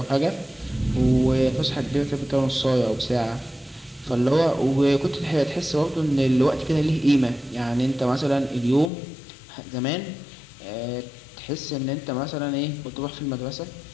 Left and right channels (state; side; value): drops out; right; at 8.9 s